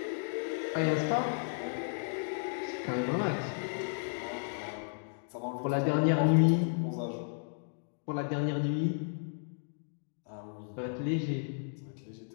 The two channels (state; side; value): silent; right; digital silence